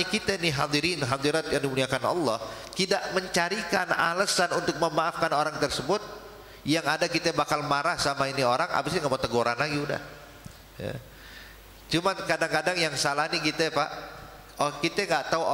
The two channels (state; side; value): identical; both; correlation 1.00